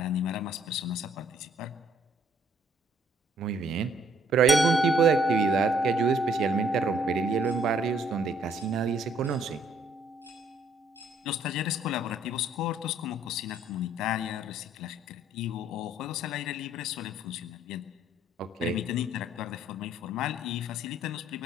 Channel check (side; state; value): both; normal; correlation 0.64